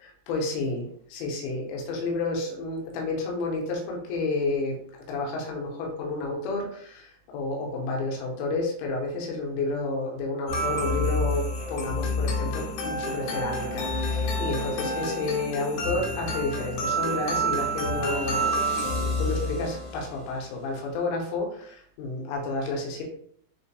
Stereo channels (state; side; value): late; right; 17 ms